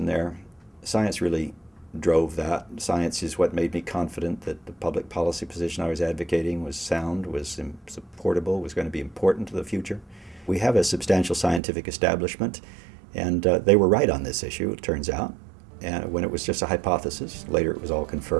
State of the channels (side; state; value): left; drops out; at 11.6 s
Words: there. Science really drove that. Science is what made me confident that the public policy position I was advocating was sound, was supportable, was going to be important to the future. We have a substantial scientific establishment, and they were right on this issue, it turns out. And when it was just a hypothesis, later it was all